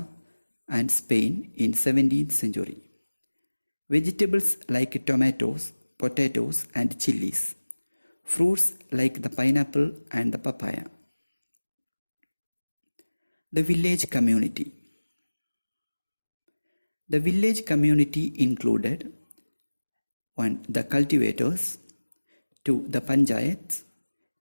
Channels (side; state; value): both; inverted; correlation -1.00